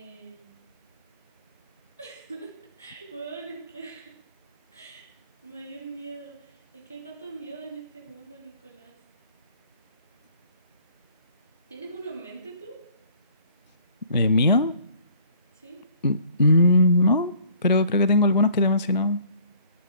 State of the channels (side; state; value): both; inverted; correlation -0.55